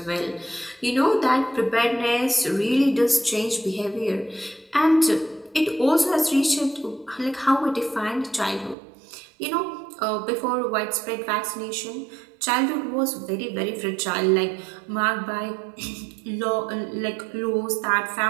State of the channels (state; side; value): drops out; left; at 8.8 s